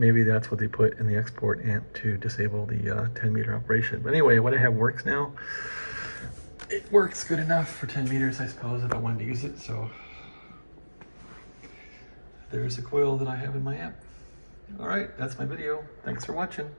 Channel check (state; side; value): inverted; both; correlation -1.00